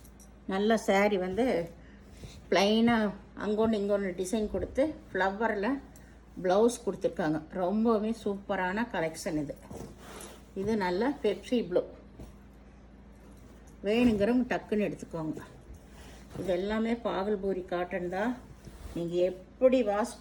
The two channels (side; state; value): both; identical; correlation 1.00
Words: நல்ல சாரீ வந்து ப்ளைனாக அங்கொன்று இங்கொன்று டிசைன் கொடுத்து ஃப்ளவரில் ப்ளவுஸ் கொடுத்துருக்காங்க. ரொம்பவே சூப்பரான கலெக்ஷன் இது. இது நல்ல பெப்சி ப்ளூ. வேணுங்கிறவங்க டக்குன்னு எடுத்துக்கோங்க. இது எல்லாமே பாகல்பூரி காட்டன் தான். நீங்கள் எப்படி வாஷ்